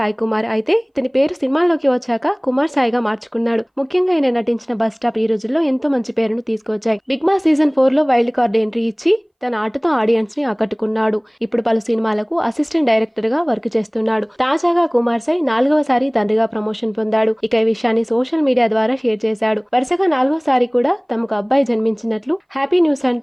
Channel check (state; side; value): identical; both; correlation 1.00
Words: కుమార్. అయితే ఇతని పేరు సినిమాల్లోకి వచ్చాక కుమార్ సాయిగా మార్చుకున్నాడు. ముఖ్యంగా ఆయన నటించిన బస్ స్టాప్ ఈ రోజుల్లో ఎంతో మంచి పేరును తీసుకొచ్చాయి. బిగ్ బాస్ సీజన్ 4 లో వైల్డ్ కార్డ్ ఎంట్రీ ఇచ్చి తన ఆటతో ఆడియన్స్ ని ఆకట్టుకున్నాడు. ఇప్పుడు పలు సినిమాలకు అసిస్టెంట్ డైరెక్టర్ గా వర్క్ చేస్తున్నాడు. తాజాగా కుమార్ సాయి 4వసారి తండ్రిగా ప్రమోషన్ పొందాడు. ఇక ఈ విషయాన్ని సోషల్ మీడియా ద్వారా షేర్ చేశాడు. వరుసగా 4వసారి కూడా తమకు అబ్బాయి జన్మించినట్లు హ్యాపీ న్యూస్